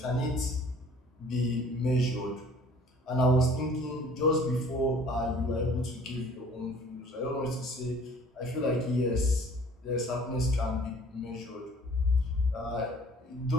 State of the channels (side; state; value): both; normal; correlation 0.52